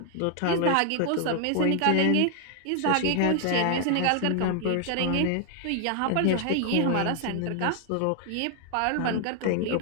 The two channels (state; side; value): different; both; correlation 0.00